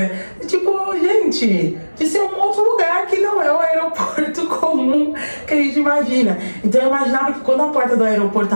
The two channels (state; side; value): inverted; both; correlation -1.00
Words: tipo, gente, de ser um outro lugar que não é o aeroporto comum que a gente imagina. Então eu imaginava que quando a porta do aeroporto